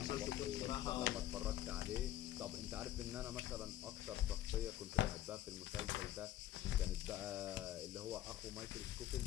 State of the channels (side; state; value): right; quieter; 13.3 dB